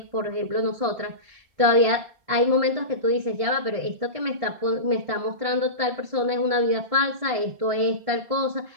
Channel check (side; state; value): left; late; 1.5 ms